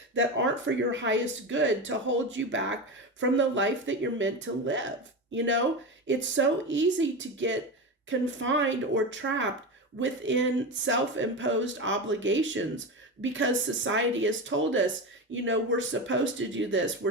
that aren't for your highest good to hold you back from the life that you're meant to live. It's so easy to get confined or trapped within self-imposed obligations because society has told us, we're supposed to do this. We're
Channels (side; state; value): both; normal; correlation 0.21